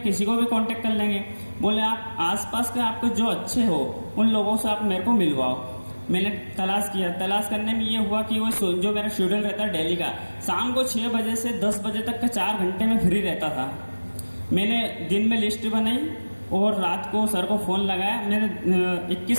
को भी कांटेक्ट कर लेंगे। बोले आप आसपास के आपको जो अच्छे हो उन लोगों से आप मेरे को मिलवाओ। मैंने तलाश किया। तलाश करने में ये हुआ कि वो जो मेरा शेड्यूल रहता है डेली का, शाम को 6 बजे से 10 बजे तक का 4 घंटे में फ्री रहता था। मैंने दिन में लिस्ट बनाई और रात को सर को फ़ोन लगाया। मैंने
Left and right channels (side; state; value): both; inverted; correlation -1.00